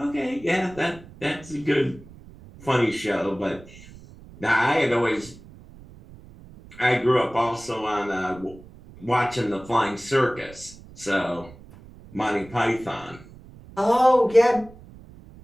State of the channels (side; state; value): right; noise; rumble, 20 dB below the sound